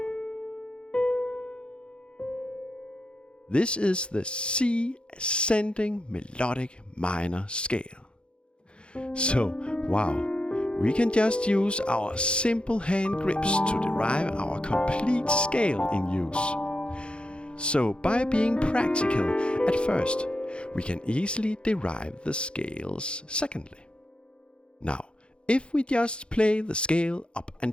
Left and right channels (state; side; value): late; right; 0.056 ms